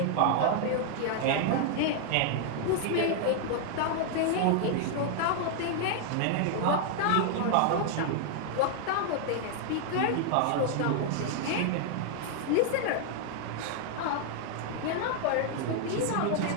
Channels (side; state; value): both; different; correlation 0.00